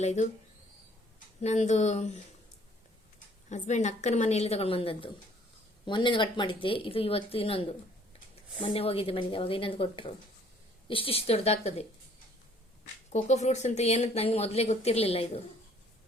ಇದು ನಂದು ಹಸ್ಬೆಂಡ್ ಅಕ್ಕನ ಮನೆಯಲ್ಲಿ ತಗೊಂಡು ಬಂದದ್ದು. ಮೊನ್ನೆ ಕಟ್ ಮಾಡಿದ್ದೆ. ಇದು ಇವತ್ತು ಇನ್ನೊಂದು. ಮೊನ್ನೆ ಹೋಗಿದ್ದೆ ಮನೆಗೆ, ಅವಾಗ ಇನ್ನೊಂದು ಕೊಟ್ಟರು. ಇಷ್ಟಿಷ್ಟು ದೊಡ್ಡದಾಗ್ತದೆ. ಕೋಕೋ ಫ್ರೂಟ್ಸ್ ಅಂತ ಏನಂತ ನನಗೆ ಮೊದಲೇ ಗೊತ್ತಿರಲಿಲ್ಲ. ಇದು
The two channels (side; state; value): both; normal; correlation 0.59